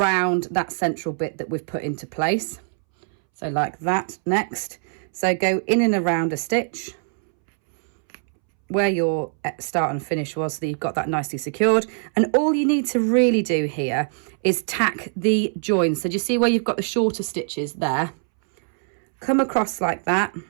that central bit that we've put into place. So like that next. So go in and around a stitch where your start and finish was, so that you've got that nicely secured. And all you need to really do here is tack the joins. So do you see where you've got the shorter stitches there? Come across like that,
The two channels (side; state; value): left; silent; 64 dB below the other